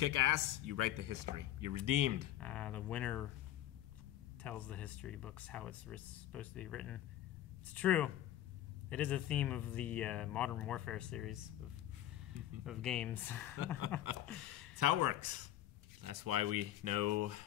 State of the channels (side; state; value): right; quieter; 12.8 dB